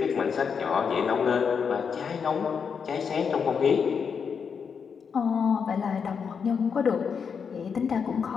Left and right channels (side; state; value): right; quieter; 6.3 dB